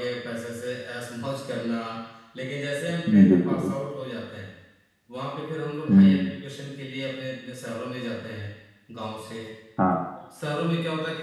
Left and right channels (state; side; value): identical; both; correlation 1.00